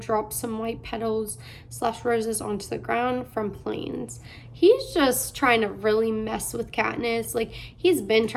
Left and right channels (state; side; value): identical; both; correlation 1.00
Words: some white petals / roses onto the ground from planes. He's just trying to really mess with Katniss. Like, he's been